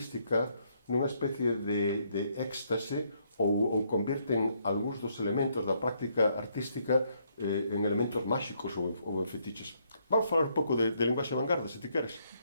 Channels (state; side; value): inverted; both; correlation -0.72